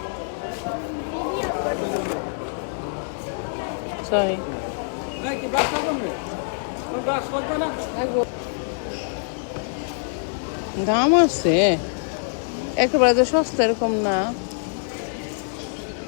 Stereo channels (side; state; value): right; silent; digital silence